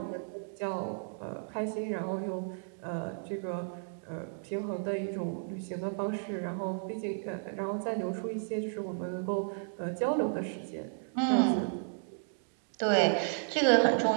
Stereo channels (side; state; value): left; silent; digital silence